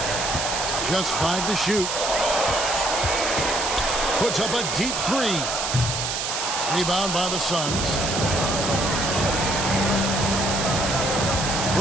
Just 5 to shoot. Puts up a deep 3. Rebound by the Suns.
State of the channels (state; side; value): noise; right; hiss, 2 dB below the sound